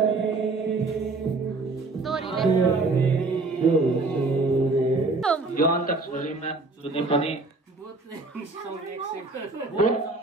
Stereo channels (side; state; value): left; quieter; 3.5 dB